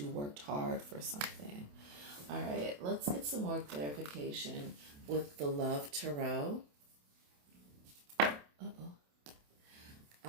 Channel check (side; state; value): left; late; 28 ms